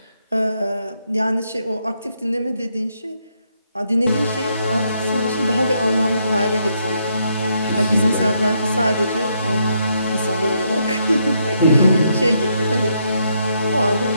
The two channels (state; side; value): inverted; both; correlation -0.76